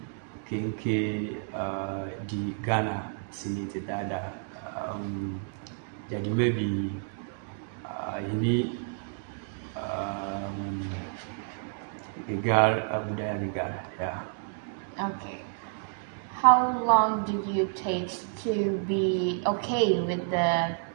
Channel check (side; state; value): left; silent; 58 dB below the other